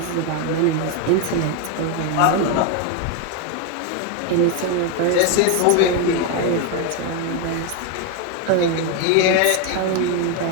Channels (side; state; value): both; different; correlation 0.02